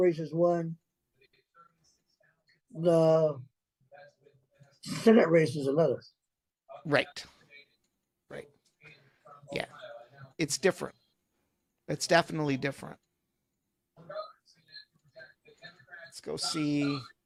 is one. The Senate race is another. Right. Right. Yeah. It's different. It's definitely different. Let's go see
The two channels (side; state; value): both; identical; correlation 1.00